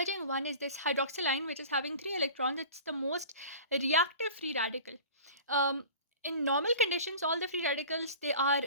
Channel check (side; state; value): both; inverted; correlation -0.40